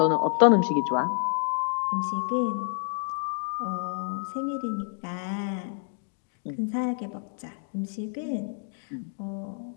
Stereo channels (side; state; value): right; silent; 59 dB below the other